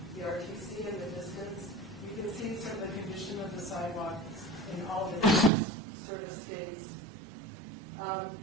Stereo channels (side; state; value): left; drops out; at 5.5 s